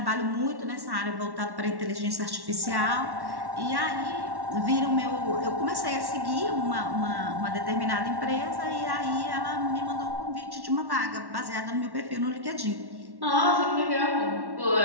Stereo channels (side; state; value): left; late; 1.1 ms